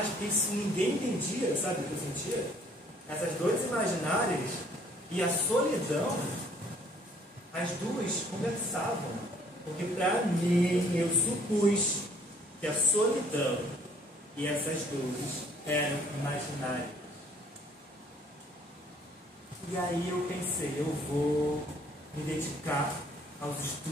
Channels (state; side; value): normal; both; correlation 0.60